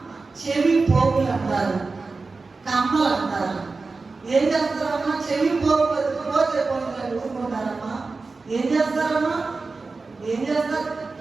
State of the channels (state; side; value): quieter; left; 4.0 dB